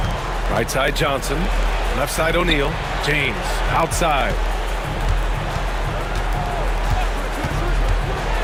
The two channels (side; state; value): both; identical; correlation 1.00